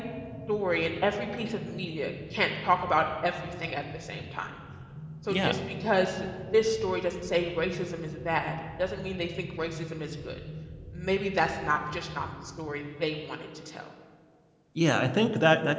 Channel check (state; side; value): identical; both; correlation 1.00